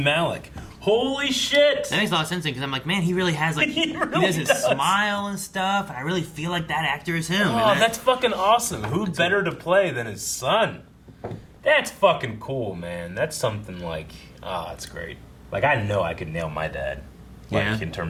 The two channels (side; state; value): both; identical; correlation 1.00